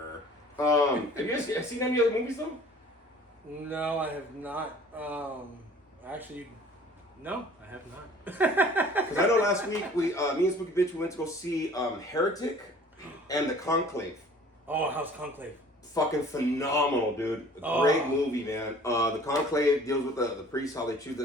Have you guys seen any other movies, though? No, I have not. Actually, no, I have not. Because I know last week, me and Spooky Bitch, we went to go see Heretic and The Conclave. Oh, how's Conclave? Fucking phenomenal, dude. Great movie, man. The Conclave deals with the priests, how they choose the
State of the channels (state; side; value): normal; both; correlation 0.49